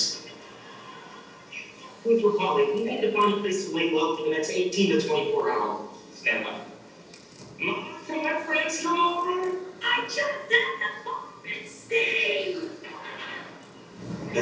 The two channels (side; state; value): both; identical; correlation 1.00